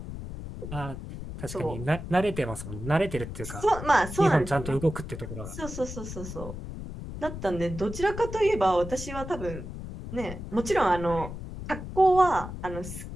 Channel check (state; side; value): noise; left; rumble, 9 dB below the sound